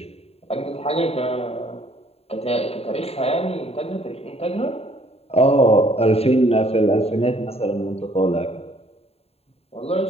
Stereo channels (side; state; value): right; late; 0.29 ms